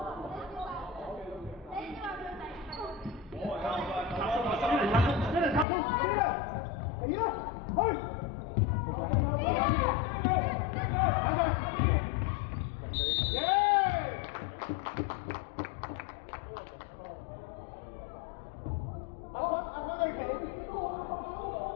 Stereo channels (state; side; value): drops out; right; at 5.7 s